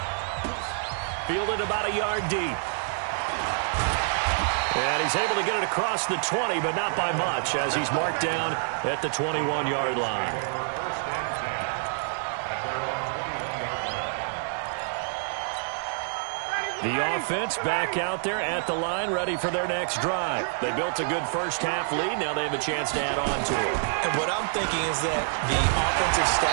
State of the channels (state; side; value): silent; left; digital silence